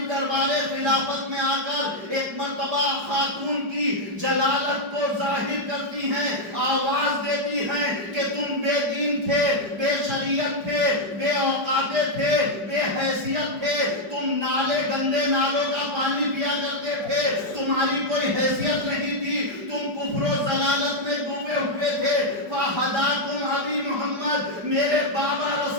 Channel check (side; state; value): left; late; 5.0 ms